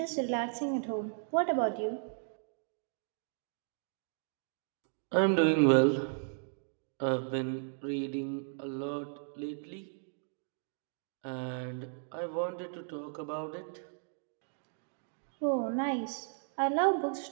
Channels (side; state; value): left; silent; digital silence